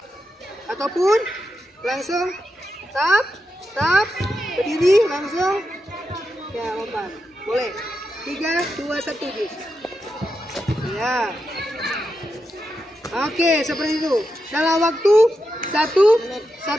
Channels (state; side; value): normal; both; correlation 0.87